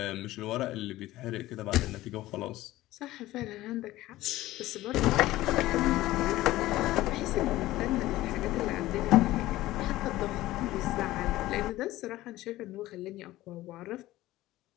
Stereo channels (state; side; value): quieter; right; 16.5 dB